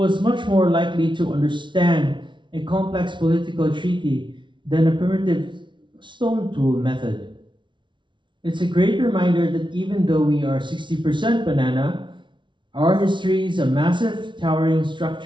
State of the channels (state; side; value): late; left; 0.24 ms